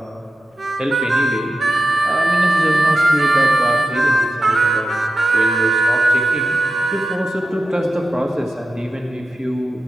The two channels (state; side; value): normal; both; correlation 0.92